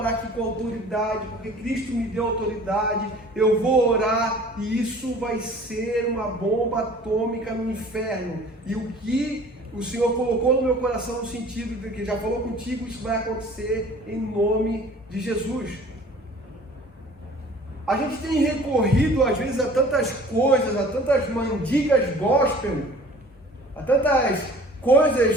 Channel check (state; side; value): normal; both; correlation 0.48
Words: aqui com autoridade, porque Cristo me deu autoridade, eu vou orar e isso vai ser uma bomba atômica no inferno. E o que o Senhor colocou no meu coração no sentido de que já falou contigo, isso vai acontecer em nome de Jesus. A gente tem recorrido às vezes a tantas coisas, a tantas mandigas gospel, a tantas